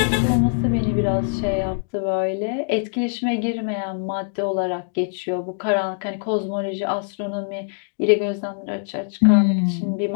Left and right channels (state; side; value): silent; right; digital silence